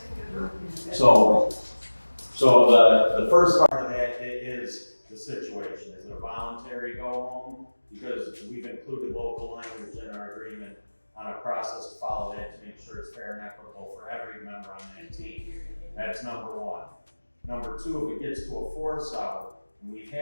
So the first part of that is the situation. Is it a voluntary go home? Because we've included local language in our agreement on a process to follow that to make sure it's fair and equitable for every member on that team. That's number one. Number two, if it gets to a force out, and we've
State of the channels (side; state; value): both; inverted; correlation -1.00